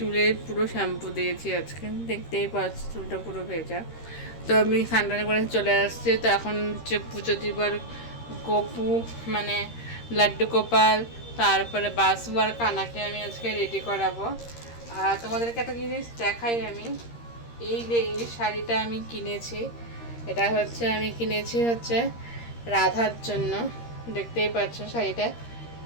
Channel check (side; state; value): right; late; 13 ms